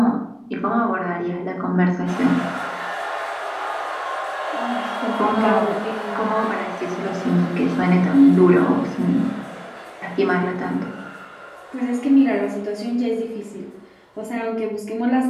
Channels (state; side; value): identical; both; correlation 1.00